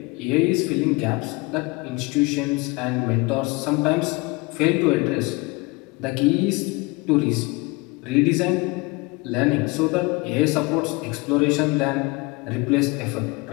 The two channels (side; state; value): right; quieter; 25.7 dB